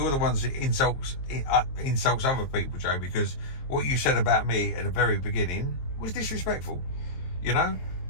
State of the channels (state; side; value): late; right; 22 ms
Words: the ones that insults other people, Joe, because what you said about me at the very beginning was disrespectful. You know,